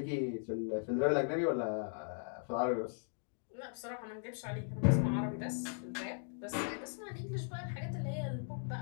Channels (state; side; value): silent; right; digital silence